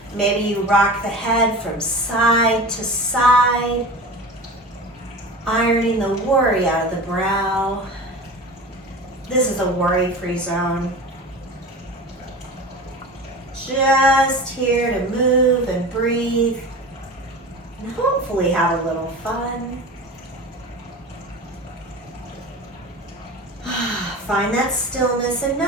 Maybe you rock the head from side to side, ironing the worry out of the brow. This is a worry-free zone. Just here to move and breathe and hopefully have a little fun. Find that stillness and know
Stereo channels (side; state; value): both; normal; correlation 0.33